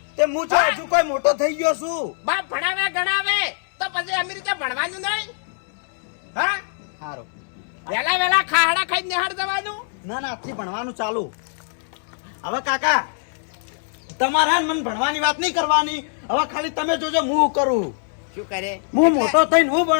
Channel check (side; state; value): right; silent; digital silence